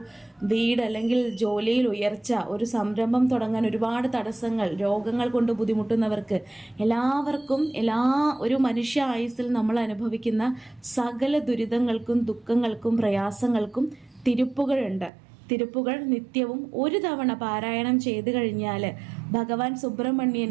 വീട് അല്ലെങ്കിൽ ജോലിയിൽ ഉയർച്ച, ഒരു സംരംഭം തുടങ്ങാൻ ഒരുപാട് തടസ്സങ്ങൾ, രോഗങ്ങൾ കൊണ്ട് ബുദ്ധിമുട്ടുന്നവർക്ക് എല്ലാവർക്കും ഒരു മനുഷ്യ ആയുസ്സിൽ നമ്മൾ അനുഭവിക്കുന്ന സകല ദുരിതങ്ങൾക്കും ദുഃഖങ്ങൾക്കും പ്രയാസങ്ങൾക്കും തിരുപ്പുകളുണ്ട്. തിരുപ്പുകൾ നിത്യവും ഒരു തവണ പാരായണം ചെയ്തു കഴിഞ്ഞാൽ ഭഗവാൻ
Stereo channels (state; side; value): drops out; left; at 15.1 s